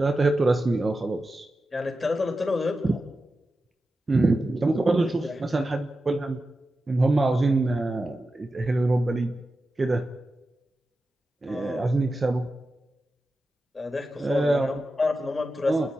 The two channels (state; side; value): normal; both; correlation 0.92